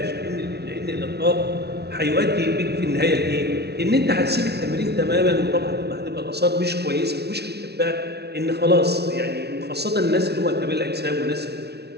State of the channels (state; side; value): late; left; 0.48 ms